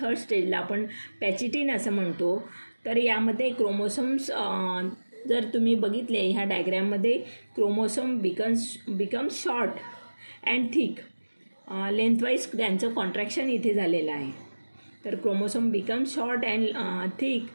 स्टेजला आपण पॅचिटिन असं म्हणतो. तर यामध्ये क्रोमोसोम्स जर तुम्ही बघितले ह्या डायग्रॅममध्ये, chromosome becomes short and thick. Lengthwise त्यांचं कॉन्ट्रॅक्शन इथे झालेलं आहे. तर chromosome becomes short and thick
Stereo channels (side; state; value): both; inverted; correlation -1.00